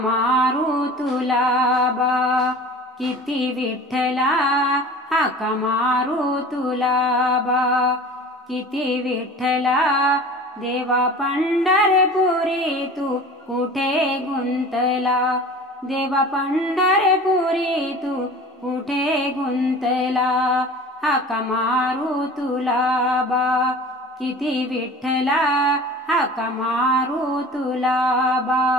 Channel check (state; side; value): normal; both; correlation 0.40